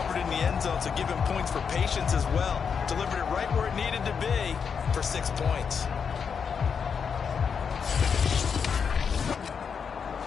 in the end zone, so give him points for patience as well. Delivered it right where it needed to be for 6 points.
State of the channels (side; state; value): right; quieter; 6.4 dB